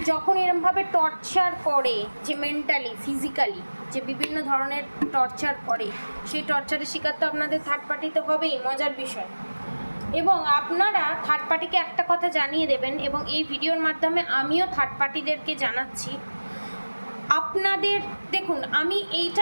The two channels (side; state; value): both; inverted; correlation -1.00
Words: যখন এরমভাবে টর্চার করে, যে মেন্টালি ফিজিক্যালি যে বিভিন্ন ধরনের টর্চার করে, সেই টর্চারের শিকার তো আপনাদের থার্ড পার্টিতে হবেই, মজার বিষয়। এবং আপনারা থার্ড পার্টিকে একটা কথা জানিয়ে দেবেন, এবং এই ভিডিওর মাধ্যমে আমিও থার্ড পার্টিদেরকে জানাচ্ছি, আপনাদের দেখুন, আমি